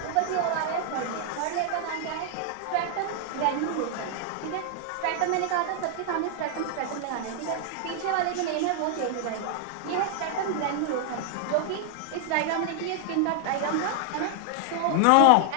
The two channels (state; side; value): different; both; correlation 0.00